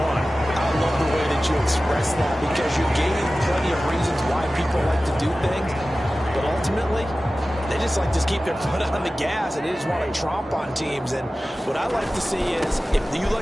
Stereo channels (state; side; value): normal; both; correlation 0.96